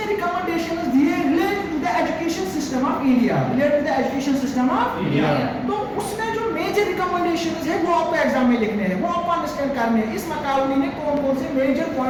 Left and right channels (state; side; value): identical; both; correlation 1.00